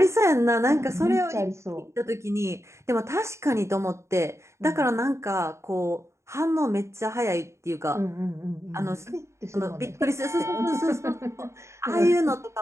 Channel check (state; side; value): late; left; 0.14 ms